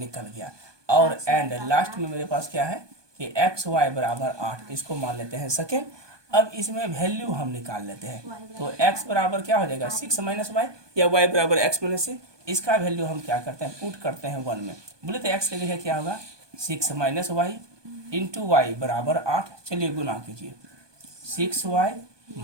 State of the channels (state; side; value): late; left; 1.2 ms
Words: गया। और एंड लास्ट में मेरे पास क्या है कि x y = 8, इसको मान लेते हैं सेकेंड। अब इसमें वैल्यू हम निकाल लेते हैं। तो x बराबर क्या हो जाएगा 6 - y या y बराबर x - c। इसका वैल्यू हम क्या करते हैं पुट करते हैं 1 में। बोले तो x की जगह क्या होगा 6 - y × y = 8। चलिए गुना कीजिए 6y -